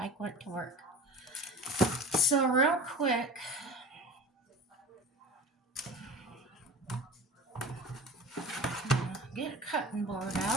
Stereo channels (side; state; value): both; normal; correlation 0.36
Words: went to work. So real quick, get a cutting board